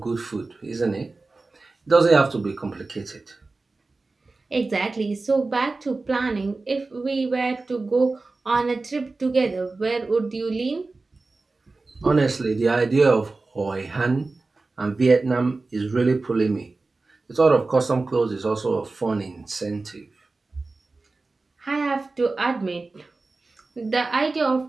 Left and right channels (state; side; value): quieter; left; 3.6 dB